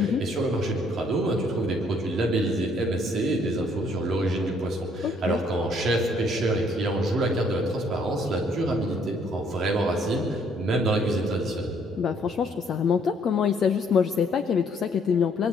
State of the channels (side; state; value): both; normal; correlation 0.65